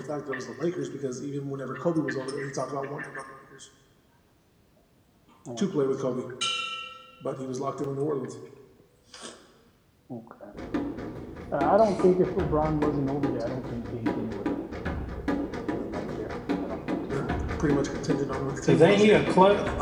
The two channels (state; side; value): identical; both; correlation 1.00